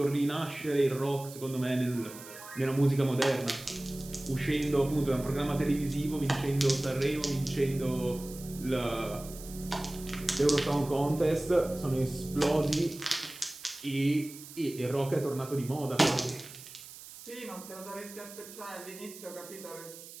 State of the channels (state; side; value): noise; right; hiss, 15 dB below the sound